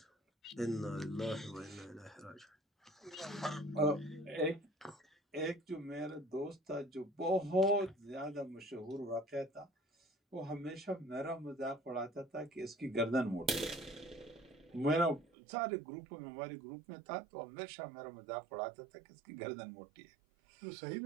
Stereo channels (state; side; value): drops out; left; at 15.2 s